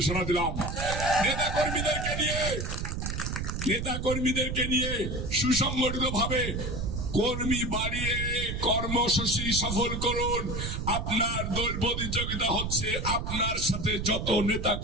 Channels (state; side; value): noise; right; rumble, 3 dB below the sound